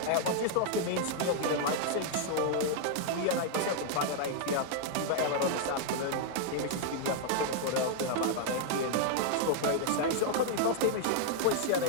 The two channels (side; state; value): both; different; correlation 0.00